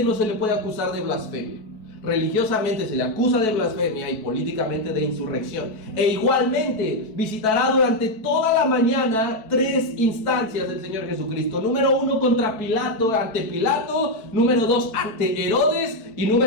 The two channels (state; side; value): late; right; 4.6 ms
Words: no se le puede acusar de blasfemia. Religiosamente se le acusa de blasfemia y políticamente de insurrección. E igualmente visitará durante toda la mañana 3 instancias del Señor Jesucristo. Número 1 contra Pilato, ante Pilato. Número 2 ante Herodes. Y